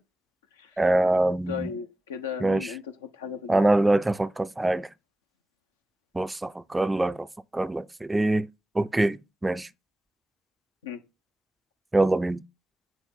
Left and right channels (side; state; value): both; normal; correlation 0.96